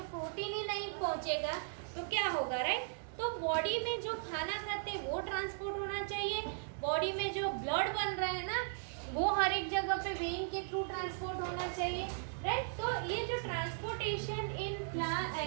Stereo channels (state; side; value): silent; left; digital silence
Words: प्रोटीन ही नहीं पहुंचेगा तो क्या होगा, राइट। तो बॉडी में जो खाना खाते हैं वो ट्रांसपोर्ट होना चाहिए, बॉडी में जो ब्लड बन रहा है ना, वो हर एक जगह पे वेन के थ्रू ट्रांसपोर्ट होना चाहिए, राइट। तो ये जो transportation in